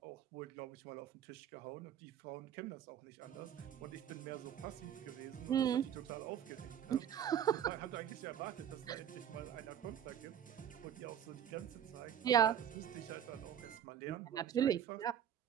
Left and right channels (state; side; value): quieter; left; 9.6 dB